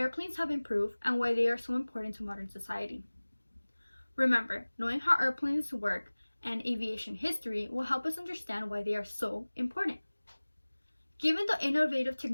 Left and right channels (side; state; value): both; inverted; correlation -1.00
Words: have improved, and why they are so important to modern society. Remember, knowing how airplanes work and aviation history will help us understand why they are so important. Given the innovative